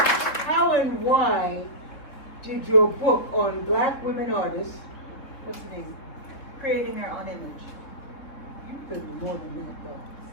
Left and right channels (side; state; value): right; late; 3.7 ms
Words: How and why did your book on Black women artists, what's the name? Creating Their Own Image. You've been more than that, though.